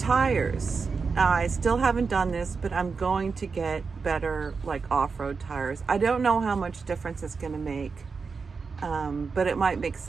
I still haven't done this, but I'm going to get better like off-road tires. I don't know how much difference it's going to make, but it might make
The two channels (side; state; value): left; quieter; 5.0 dB